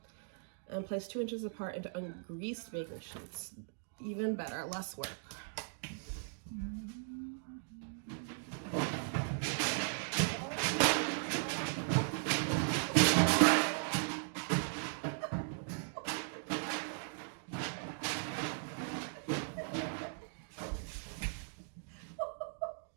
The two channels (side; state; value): left; silent; digital silence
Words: And place 2 inches apart into ungreased baking sheets. Even better, less work.